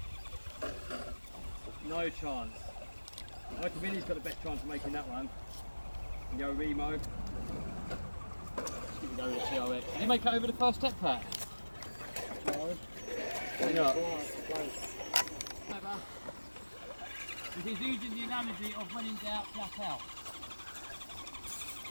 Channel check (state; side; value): inverted; both; correlation -1.00